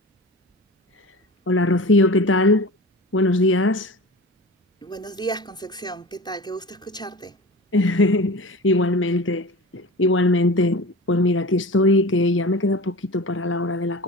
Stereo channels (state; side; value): normal; both; correlation 0.34